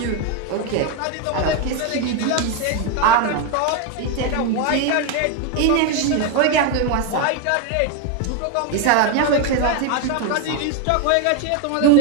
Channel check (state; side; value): different; both; correlation 0.02